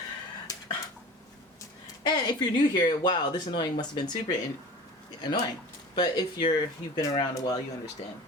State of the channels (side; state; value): both; normal; correlation 0.38